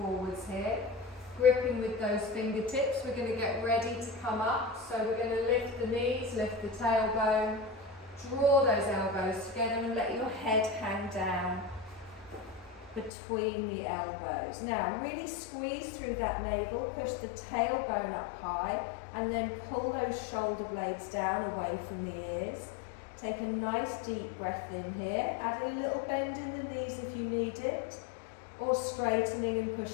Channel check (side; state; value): right; drops out; at 13.1 s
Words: here. Gripping with those fingertips, we're going to get ready to come up. So we're going to lift the knees, lift the tailbone, draw those elbows together and let your head hang down between the elbows. Now really squeeze through that navel, push the tailbone up high and then pull those shoulder blades down away from the ears. Take a nice deep breath in here, add a little bend in the knees if you need it, or straightening and